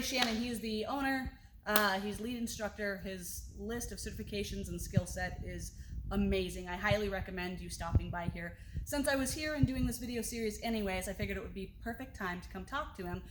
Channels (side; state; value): both; identical; correlation 1.00